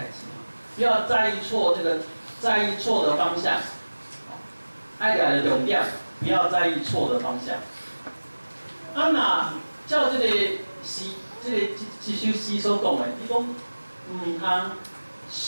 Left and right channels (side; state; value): both; inverted; correlation -1.00